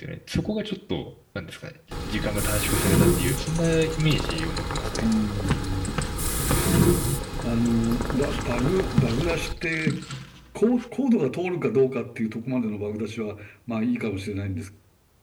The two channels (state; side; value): identical; both; correlation 1.00